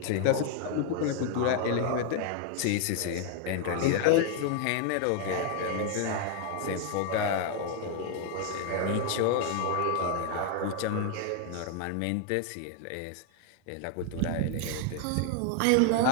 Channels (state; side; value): different; both; correlation 0.00